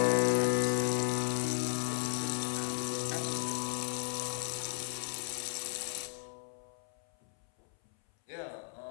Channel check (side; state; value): right; silent; 54 dB below the other